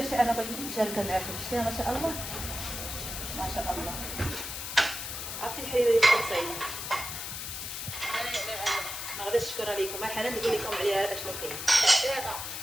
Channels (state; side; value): noise; left; hiss, 6 dB below the sound